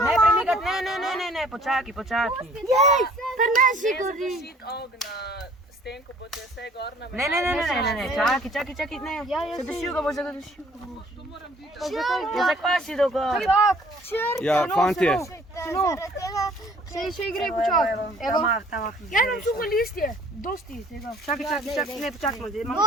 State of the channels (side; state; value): both; normal; correlation 0.56